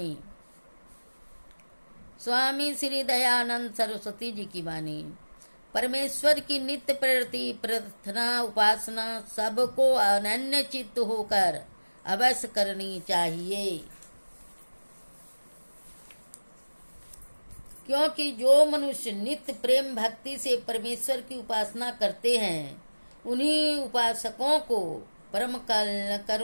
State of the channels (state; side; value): inverted; both; correlation -1.00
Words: स्वामी श्री दयानंद सरस्वती जी की वाणी। परमेश्वर की नित्य प्रति प्रार्थना उपासना सबको अनन्य चित्त होकर अवश्य करनी चाहिए, क्योंकि जो मनुष्य नित्य प्रेम भक्ति से परमेश्वर की उपासना करते हैं उन्हीं उपासकों को परम